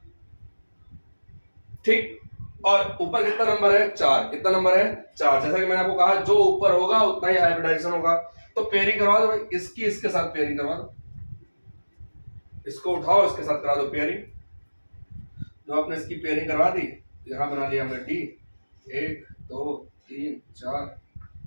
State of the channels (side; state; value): both; inverted; correlation -1.00